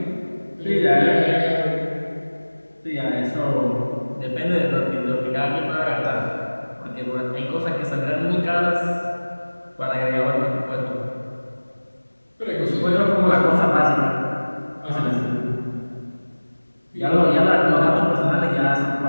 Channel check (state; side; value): inverted; both; correlation -1.00